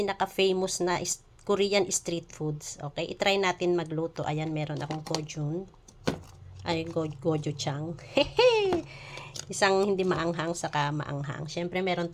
na Korean street foods. Okay, itry natin magluto. Ayan, meron akong gochujang. Ay, gochujang. Isang hindi maanghang, saka maanghang. Siyempre, meron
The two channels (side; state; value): both; identical; correlation 1.00